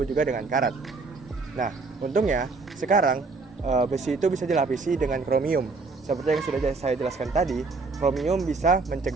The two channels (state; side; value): quieter; left; 4.0 dB